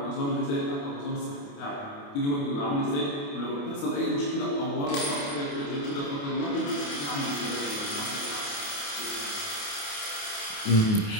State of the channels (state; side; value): late; right; 28 ms